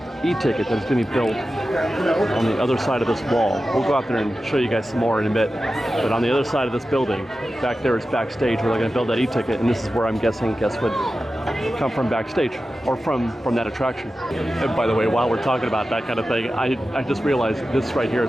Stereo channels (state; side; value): normal; both; correlation 0.93